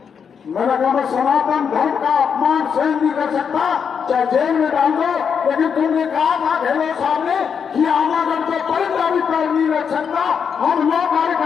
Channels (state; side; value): quieter; right; 6.8 dB